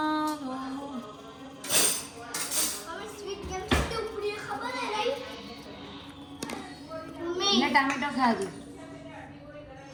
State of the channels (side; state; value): both; identical; correlation 1.00